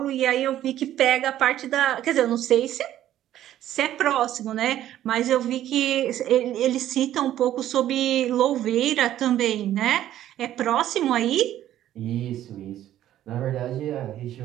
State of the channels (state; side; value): quieter; left; 12.4 dB